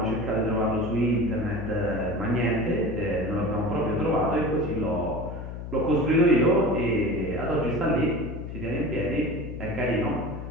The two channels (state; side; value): noise; left; hum, 8 dB below the sound